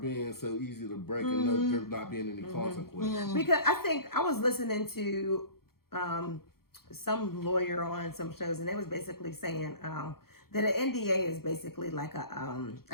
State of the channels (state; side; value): late; right; 0.94 ms